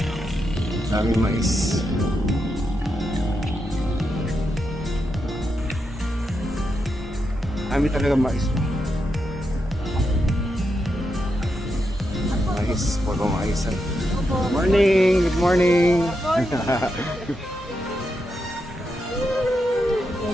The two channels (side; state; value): both; normal; correlation 0.84